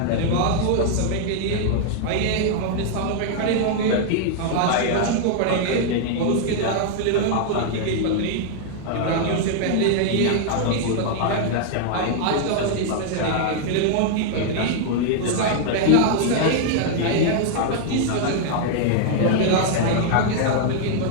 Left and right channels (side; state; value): both; different; correlation -0.01